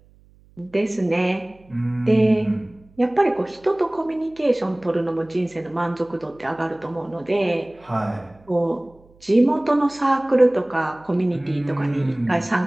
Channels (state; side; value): noise; right; hum, 29 dB below the sound